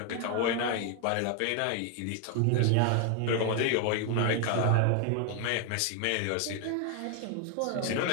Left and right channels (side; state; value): both; different; correlation 0.00